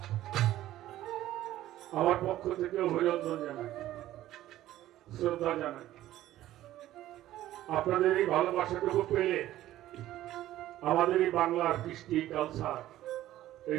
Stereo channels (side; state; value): left; quieter; 14.1 dB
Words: আমার পক্ষ থেকে অভিনন্দন জানাই, শ্রদ্ধা জানাই। আপনাদের এই ভালোবাসাটুকু পেলে আমাদের এই বাংলার কৃষ্টি কালচার